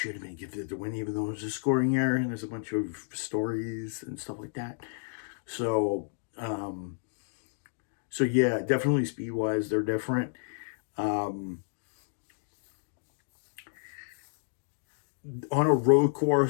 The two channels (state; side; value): silent; right; digital silence